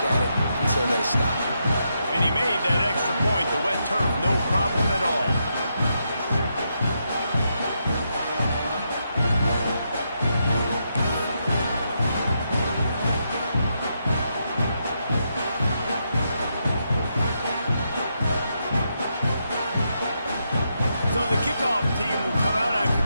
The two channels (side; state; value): both; inverted; correlation -0.82